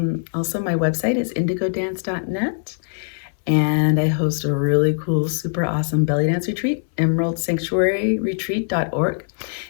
also my website is indigodance.net. And I host a really cool, super awesome belly dance retreat, emeraldsanctuaryretreat.org.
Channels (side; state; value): right; silent; 63 dB below the other